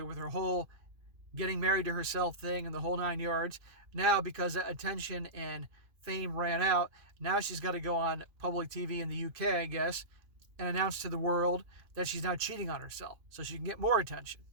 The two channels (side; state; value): left; late; 2.5 ms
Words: with her whole getting married to herself thing and the whole 9 yards, now because that attention and fame ran out, now she's got to go on public TV in the UK, I guess, and announce to the world that she's now cheating on herself so she can get more attention.